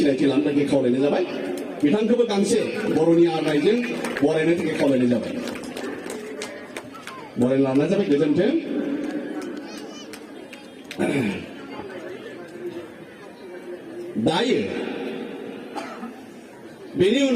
लानो थाखाय खावलायनाय जाबाय बिथांखौबो गांसे बर'नि आर'नाइजों बरायनो थाखाय खावलायनाय जाबाय बरायना लानाय जाबाय गोजोन्थों दायो बेनि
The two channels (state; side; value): identical; both; correlation 1.00